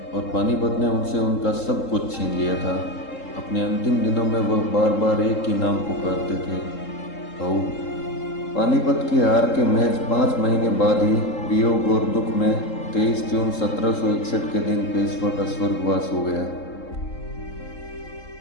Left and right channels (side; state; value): right; late; 3.7 ms